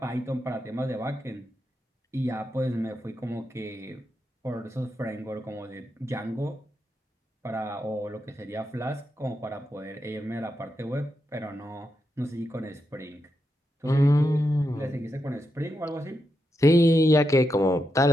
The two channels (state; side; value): normal; both; correlation 0.85